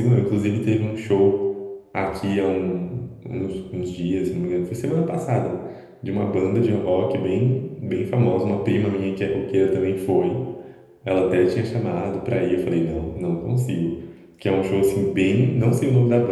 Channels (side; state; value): both; identical; correlation 1.00